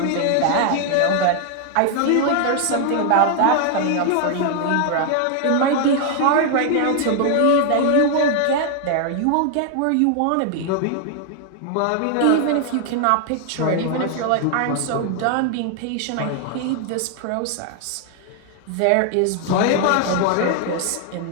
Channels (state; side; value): different; both; correlation 0.00